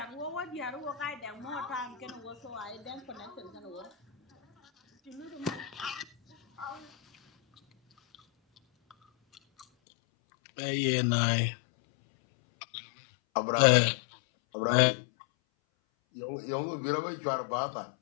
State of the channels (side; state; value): right; drops out; at 9.7 s